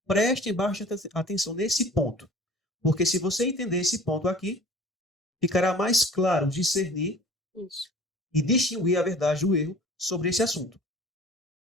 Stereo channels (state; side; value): normal; both; correlation 0.45